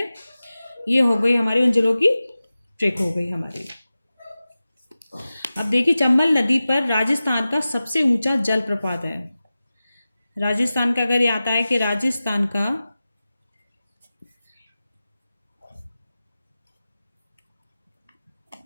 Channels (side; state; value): both; inverted; correlation -0.95